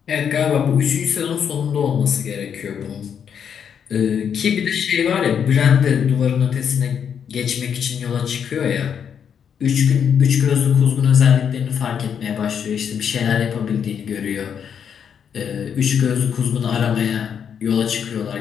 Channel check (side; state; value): right; quieter; 7.8 dB